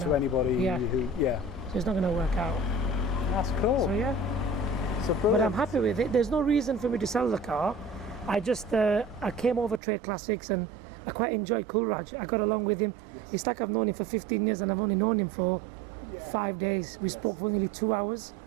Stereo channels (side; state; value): left; drops out; at 9.8 s